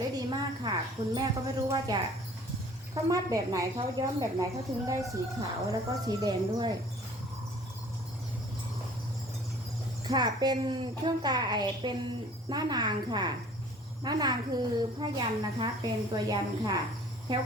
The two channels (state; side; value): normal; both; correlation 0.51